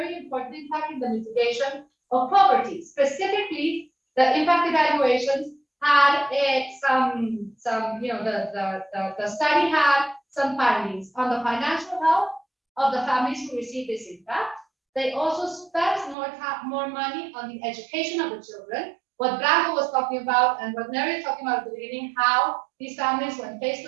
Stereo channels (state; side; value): drops out; left; at 16.2 s